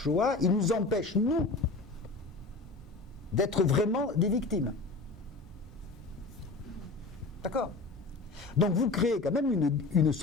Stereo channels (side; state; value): right; quieter; 3.6 dB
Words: ils nous empêchent, nous, d'être vraiment des victimes. D'accord ? Donc vous créez quand même une